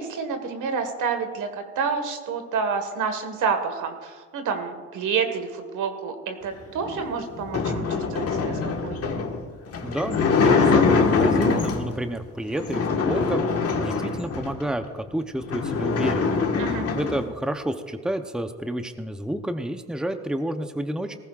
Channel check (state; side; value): normal; both; correlation 0.34